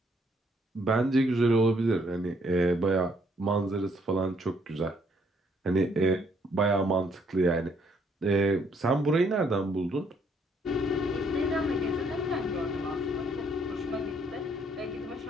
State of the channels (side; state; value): both; normal; correlation 0.68